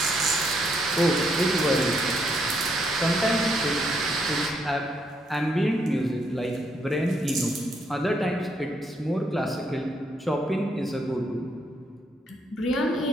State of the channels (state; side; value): normal; both; correlation 0.74